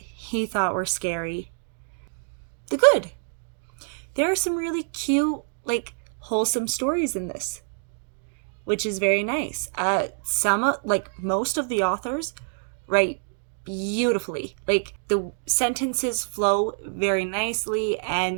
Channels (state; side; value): silent; left; 61 dB below the other